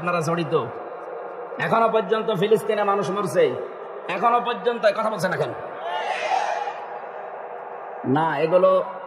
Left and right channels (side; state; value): both; identical; correlation 1.00